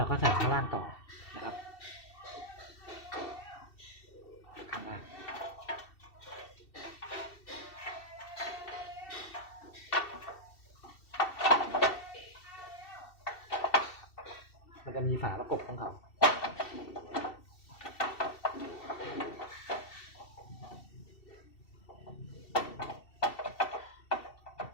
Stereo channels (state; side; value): late; right; 2.7 ms